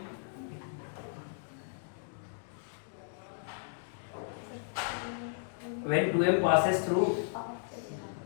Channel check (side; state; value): right; silent; digital silence